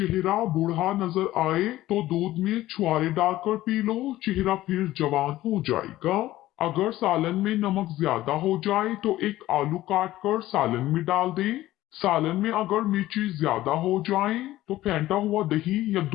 बूढ़ा नजर आए तो दूध में छुआरे डालकर पी लो, चेहरा फिर जवान हो जाएगा। अगर सालन में नमक ज्यादा हो जाए तो एक आलू काट कर सालन में डाल दें। सालन में अगर मिर्ची ज्यादा हो जाए तो फेंटा हुआ दही या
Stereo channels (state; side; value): quieter; right; 15.5 dB